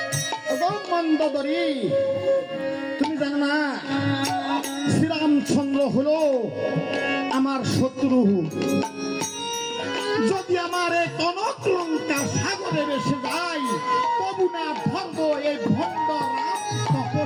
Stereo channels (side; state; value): both; identical; correlation 1.00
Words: মন্দোদরী, তুমি জানো না শ্রীরামচন্দ্র হলো আমার শত্রু। যদি আমার এই কনক লঙ্কা সাগরে ভেসে যায়, তবু না ধর্ম এই ভণ্ড রাম